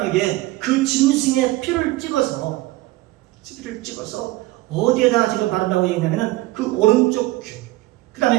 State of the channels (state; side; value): quieter; left; 18.6 dB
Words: 그 짐승의 피를 찍어서 어디에다 지금 바른다고 얘기하냐면 그 오른쪽 귀, 그